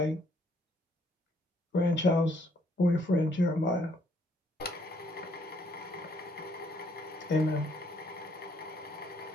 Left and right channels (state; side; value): normal; both; correlation 0.67